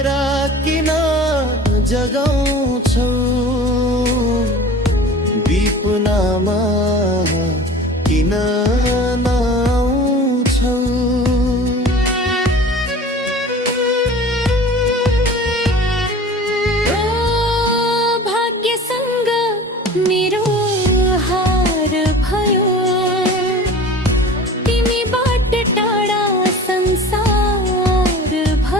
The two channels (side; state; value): both; normal; correlation 0.40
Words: किन जगाउँछौ विपनामा किन नआउँछौ ओ भाग्यसँग मेरो हार भयो तिमीबाट टाढा संसार